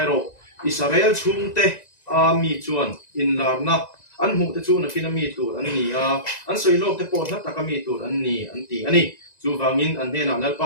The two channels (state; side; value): late; right; 1.9 ms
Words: ro Israel chung te a mi chuan in larna an mu te chu na kina mi tu an ni a an soi lok te po na ta ka mi tu an ni an ti ani chu wangin an ne na lalpa